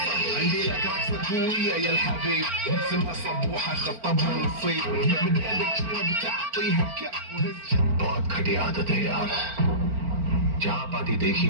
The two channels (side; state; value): left; late; 4.4 ms